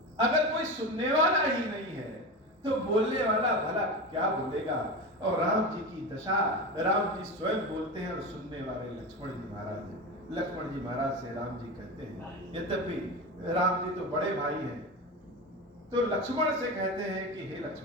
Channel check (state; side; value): normal; both; correlation 0.24